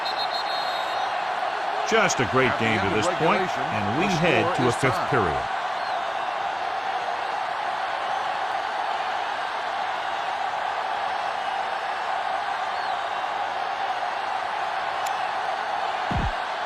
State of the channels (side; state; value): both; identical; correlation 1.00